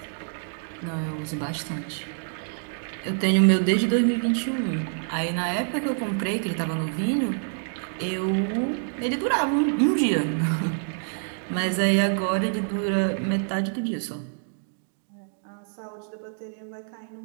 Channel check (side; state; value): left; silent; digital silence